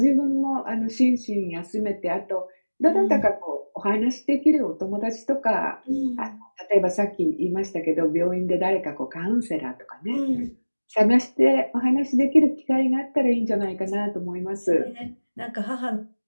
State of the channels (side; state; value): both; inverted; correlation -1.00